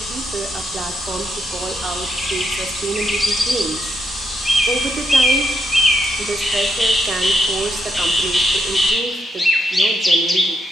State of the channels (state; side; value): normal; both; correlation 0.79